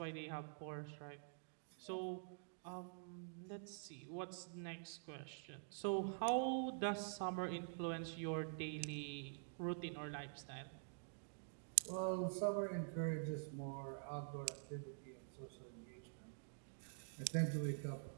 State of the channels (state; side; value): silent; left; digital silence